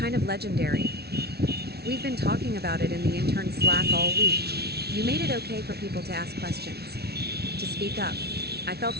of legendary. We've been talking about it in the intern Slack all week. You made it okay for people to ask questions, to speak up." I felt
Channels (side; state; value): left; late; 0.47 ms